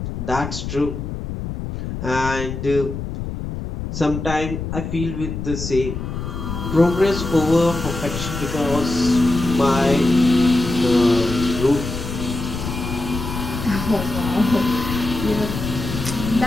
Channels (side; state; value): left; noise; rumble, 6 dB below the sound